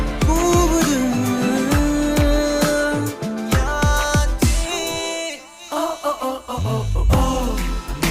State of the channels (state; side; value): identical; both; correlation 1.00